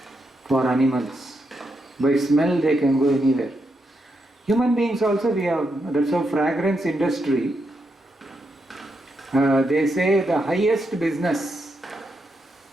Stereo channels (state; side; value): normal; both; correlation 0.82